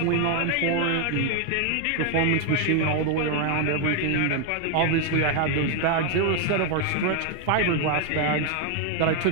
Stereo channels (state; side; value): different; both; correlation 0.01